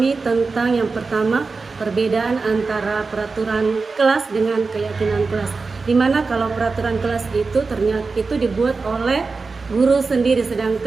tentang yang pertama, perbedaan antara peraturan kelas dengan keyakinan kelas. Dimana kalau peraturan kelas itu ternyata itu dibuat oleh guru sendiri,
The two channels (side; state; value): left; quieter; 4.2 dB